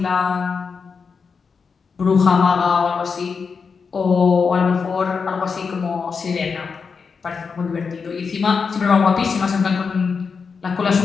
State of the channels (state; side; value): quieter; right; 5.4 dB